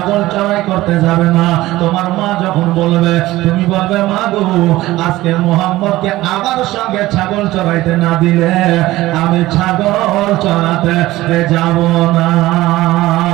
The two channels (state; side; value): quieter; left; 17.3 dB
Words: চড়াই করতে যাবে না। তোমার মা যখন বলবে, তুমি বলবে, মা গো, আজকে মুহাম্মদকে আমার সঙ্গে ছাগল চড়াইতে না দিলে আমি ছাগল চড়াতে যাব না।